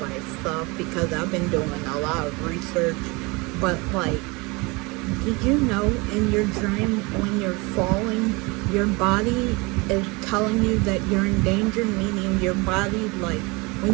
stuff because I've been doing a lot of research. But, like, did you know in your dream when you're falling, your body is telling you that you're in danger? Meaning your body, like,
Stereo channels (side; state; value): left; quieter; 26.3 dB